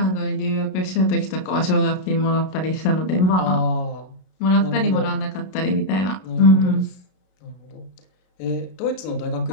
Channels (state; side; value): late; right; 32 ms